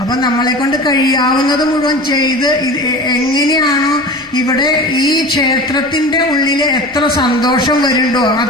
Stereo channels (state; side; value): noise; left; rumble, 29 dB below the sound